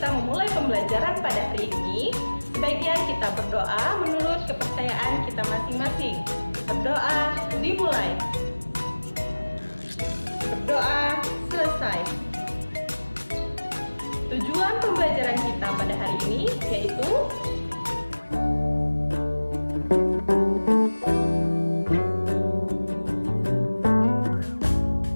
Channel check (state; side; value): inverted; both; correlation -1.00